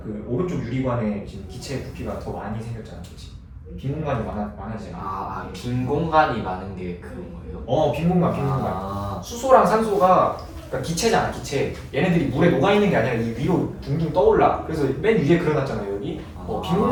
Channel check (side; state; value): both; identical; correlation 1.00